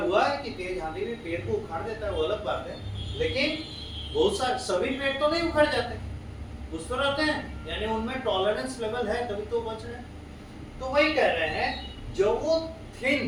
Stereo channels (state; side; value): identical; both; correlation 1.00